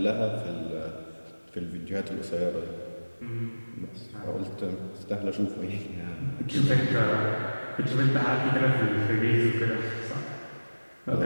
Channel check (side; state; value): both; inverted; correlation -1.00